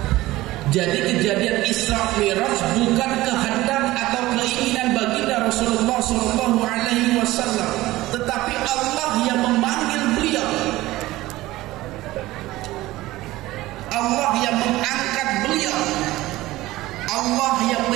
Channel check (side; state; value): left; quieter; 17.6 dB